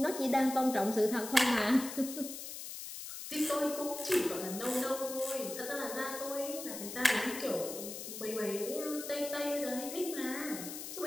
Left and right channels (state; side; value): noise; left; hiss, 9 dB below the sound